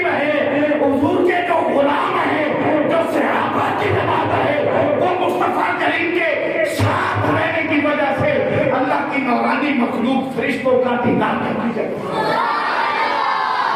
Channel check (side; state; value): both; identical; correlation 1.00